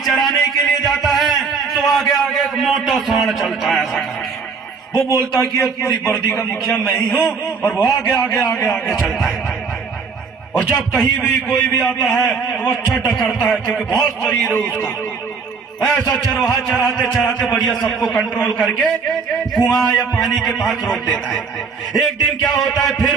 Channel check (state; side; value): quieter; left; 5.2 dB